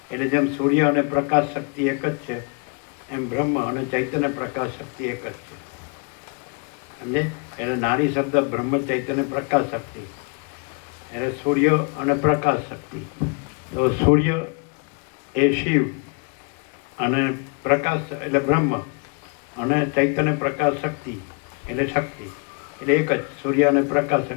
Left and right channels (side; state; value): right; quieter; 34.4 dB